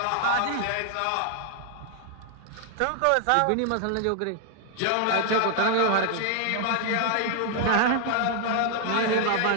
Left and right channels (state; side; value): different; both; correlation 0.00